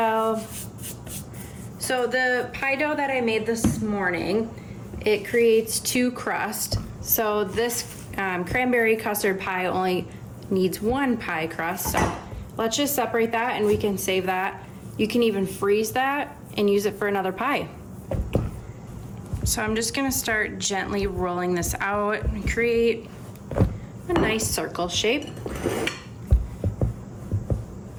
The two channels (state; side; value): identical; both; correlation 1.00